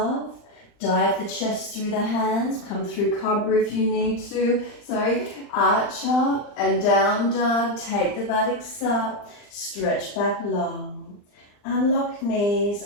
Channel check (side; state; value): right; late; 39 ms